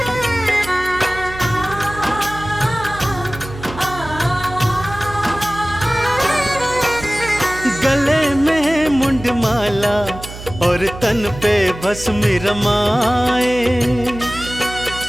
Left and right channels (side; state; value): right; noise; hum, 13 dB below the sound